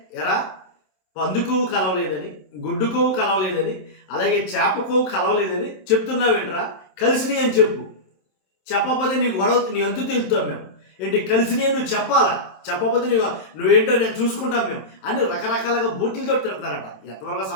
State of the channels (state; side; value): late; right; 27 ms